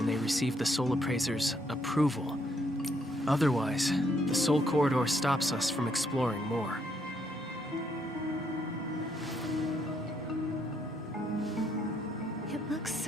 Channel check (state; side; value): normal; both; correlation 0.72